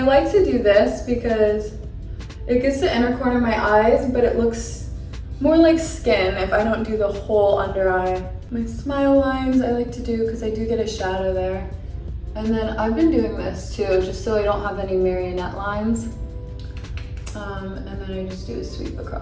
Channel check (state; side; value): identical; both; correlation 1.00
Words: like to do this because it gets the inner corner of my eyes, but it looks more like skin if I don't do the whole under eye. My smile lines I like to do because I do get a shadow there. And then I've been doing this too, just so I don't have any marionette lines. And then I just do a sweep